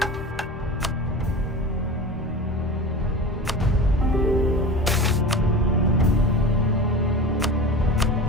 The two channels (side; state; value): both; normal; correlation 0.32